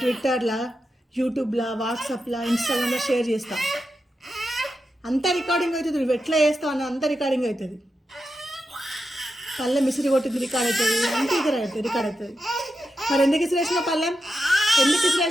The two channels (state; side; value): normal; both; correlation 0.88